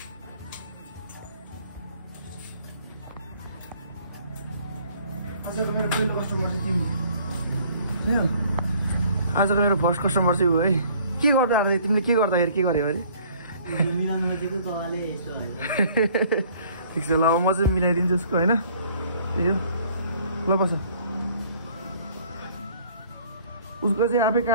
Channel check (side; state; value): both; inverted; correlation -0.57